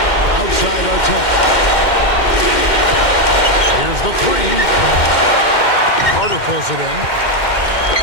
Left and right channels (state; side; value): late; right; 2.1 ms